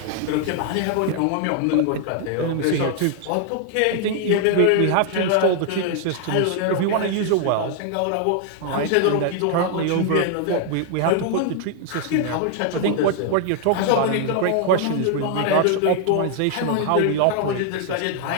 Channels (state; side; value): different; both; correlation 0.00